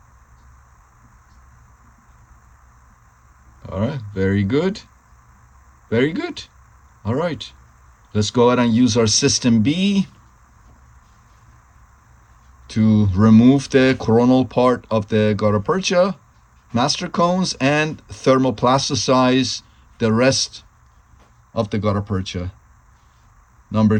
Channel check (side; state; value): both; identical; correlation 1.00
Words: All right, very good, very good. All right, let's go ahead and use our system B to remove the coronal part of the Garapercha master cones and thermoplasticize the rest of the Garapercha. Number